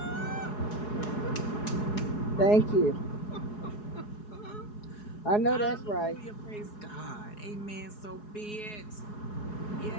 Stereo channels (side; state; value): right; late; 4.7 ms